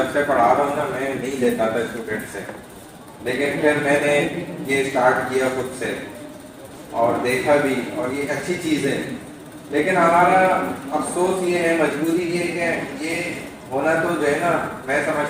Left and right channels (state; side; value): identical; both; correlation 1.00